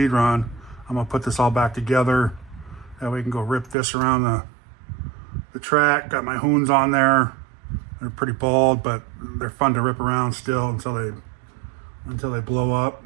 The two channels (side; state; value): left; drops out; at 3.8 s